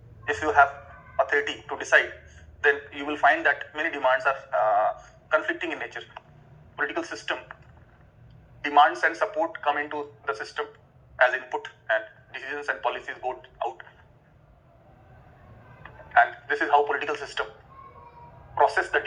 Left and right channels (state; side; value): identical; both; correlation 1.00